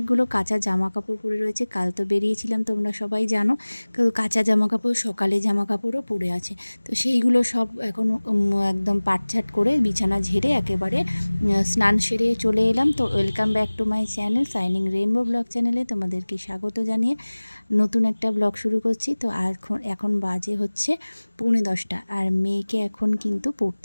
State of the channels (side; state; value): both; inverted; correlation -1.00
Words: কাঁচা জামা কাপড় পরে রয়েছে। কাল তো বেরিয়েছিলাম, তোমরা সবাই জানো। কাঁচা জামা কাপড়, সকালে জামা কাপড়ও পরে আছে। তো সেইগুলো সব এখন একদম পাটছাট করে বিছানা ঝেড়ে একেবারে স্নান সেরে চলে এলাম। তো welcome back to my channel shining rainbow blog চ্যানেলে তোমাদেরকে স্বাগত জানিয়ে নতুন একটা ব্লগ শুরু করছি। তো এখন বাজে হচ্ছে 9:45 আর মেয়েকে এখন কিন্তু